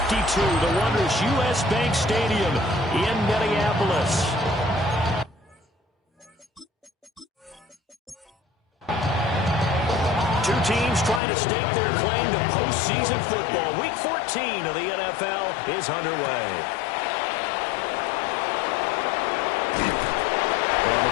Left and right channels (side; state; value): right; drops out; at 11.2 s